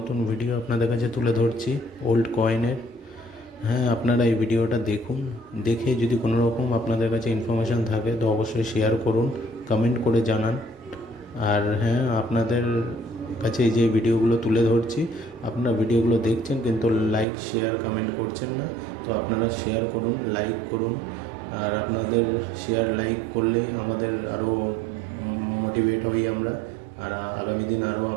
ভিডিও আপনাদের কাছে তুলে ধরছি ওল্ড কয়েনের। হ্যাঁ, আপনারা এই ভিডিওটা দেখুন। দেখে যদি কোনো রকম আপনাদের কাছে ইনফরমেশান থাকে তো অবশ্যই শেয়ার করুন, কমেন্ট করে জানান। আর হ্যাঁ, আপনাদের কাছে এই যে ভিডিওগুলো তুলে ধরছি, আপনারা ভিডিওগুলো দেখছেন কিন্তু লাইক শেয়ার কমেন্ট করছেন না। তো আপনারা শেয়ার করুন, লাইক করুন। আর আপনাদের শেয়ার লাইক করলেই আমাদের আরও মোটিভেট হই আমরা। আর আগামী দিন আরও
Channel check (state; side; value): drops out; left; at 17.2 s